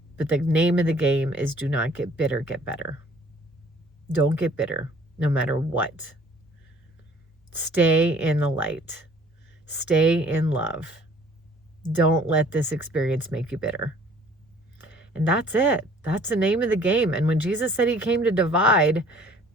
But the name of the game is do not get bitter, get better. Don't get bitter, no matter what. Stay in the light. Stay in love. Don't let this experience make you bitter. And that's it. That's the name of the game. And when Jesus said he came to divide,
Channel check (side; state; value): both; normal; correlation 0.55